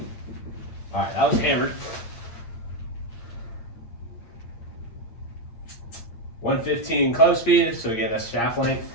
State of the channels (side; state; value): right; late; 8.7 ms